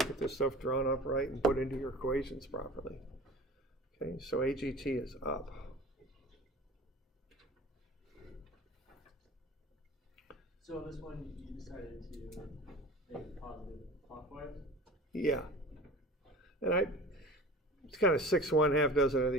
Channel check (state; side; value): normal; both; correlation 0.39